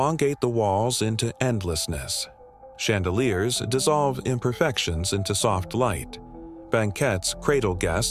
the walls into endlessness. Chandeliers dissolve imperfections into soft light. Banquettes cradle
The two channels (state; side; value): identical; both; correlation 1.00